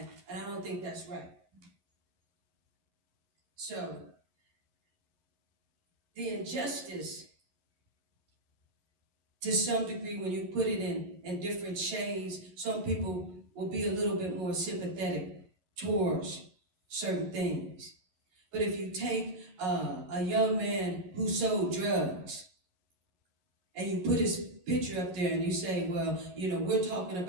I don't think that's right. So, the injustice, to some degree, when you put it in different shades, some people will be a little bit more sympathetic towards certain things. But if you take a young man who sold drugs and you put his picture up there and you say, well, you know, we're talking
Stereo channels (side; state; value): left; late; 11 ms